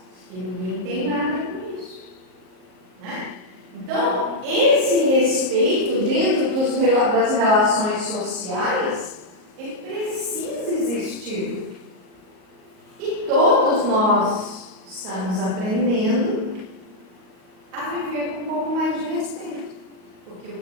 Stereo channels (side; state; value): left; late; 38 ms